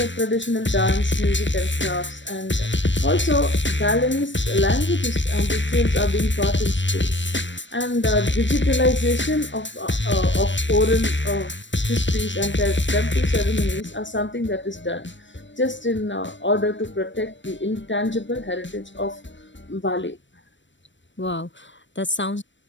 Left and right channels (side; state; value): right; late; 0.54 ms